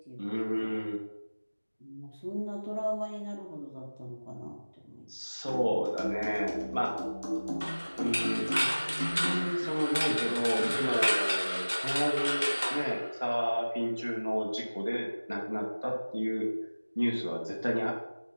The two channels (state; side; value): inverted; both; correlation -1.00